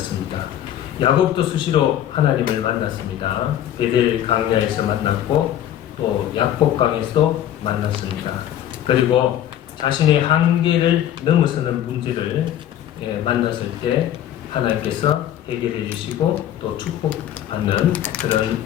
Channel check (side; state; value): right; quieter; 11.3 dB